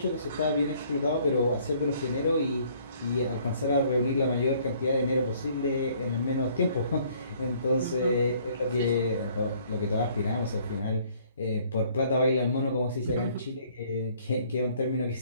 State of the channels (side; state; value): both; inverted; correlation -0.61